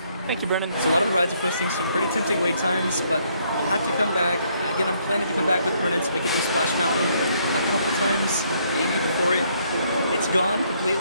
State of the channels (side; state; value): both; inverted; correlation -0.69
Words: Thank you, Brennan. So a lot of the rides are posting some pretty tempting wait times, but I'll have to come back. Again, I'm planning to come back with Brennan so we can do Splash Mountain a couple times, maybe before it's gone